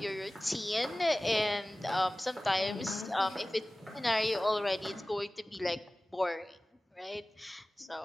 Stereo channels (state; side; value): normal; both; correlation 0.98